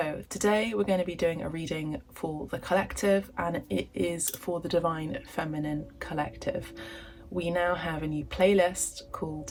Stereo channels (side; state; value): both; identical; correlation 1.00